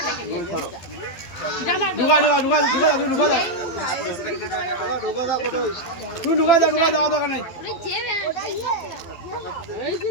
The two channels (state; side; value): late; right; 12 ms